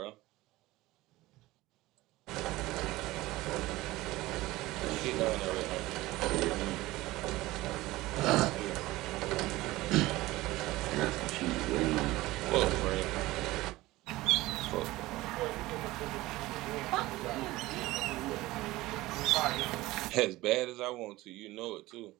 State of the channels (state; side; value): quieter; left; 18.5 dB